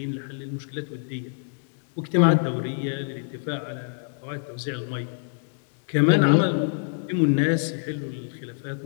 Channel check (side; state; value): right; silent; digital silence